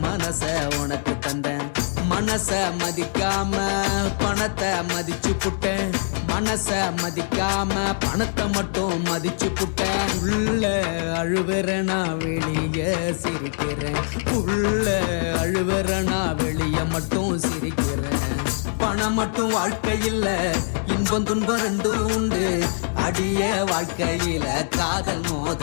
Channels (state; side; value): silent; right; digital silence